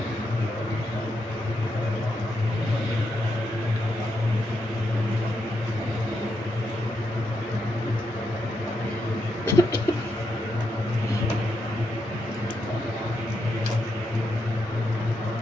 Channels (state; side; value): normal; both; correlation 0.82